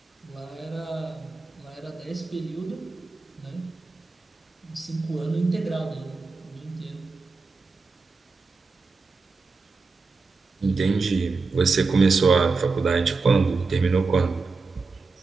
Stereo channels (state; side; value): quieter; left; 4.1 dB